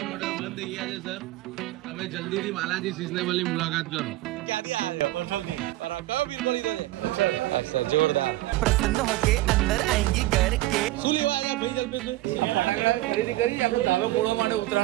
ઓર્ડર બંધ થઈ ગયા છે સર. તમે જલ્દીથી બાલાજી સિઝનેબલ ની મુલાકાત કરો. ક્યાંથી આવ્યા છો? અઠલથી. કયો પીસ મળી ગયો છે? હા સર, જોરદાર. प्रसन्न होके अंदर आएंगे घर के શું લેવા આવ્યા ભાઈ જલ્પેશભાઈ? ખરીદી કરી આપણે ધાબા પૂરવા માટે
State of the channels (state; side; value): quieter; left; 17.1 dB